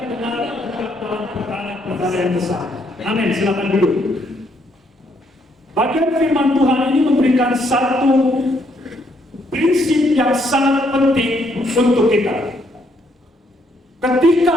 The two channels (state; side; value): normal; both; correlation 0.72